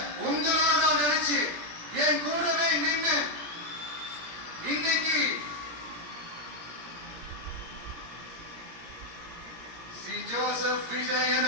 உங்களோட தான் நினைச்சு என் கூடவே நின்று இன்னைக்கு சி ஜோசப் விஜய்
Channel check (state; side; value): late; left; 17 ms